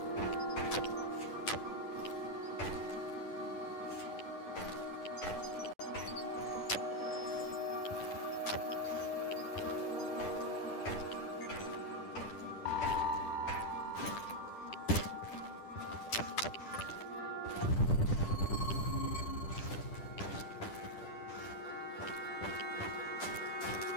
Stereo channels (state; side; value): late; right; 10 ms